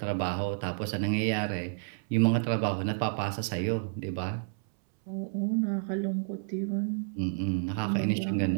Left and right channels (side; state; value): left; silent; 58 dB below the other